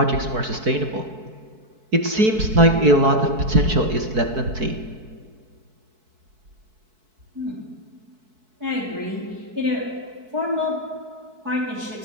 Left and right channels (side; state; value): left; late; 4.6 ms